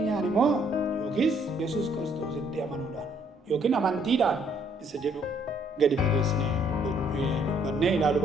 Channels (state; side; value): normal; both; correlation 0.66